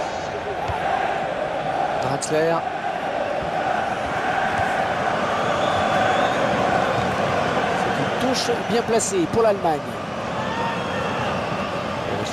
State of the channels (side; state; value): both; identical; correlation 1.00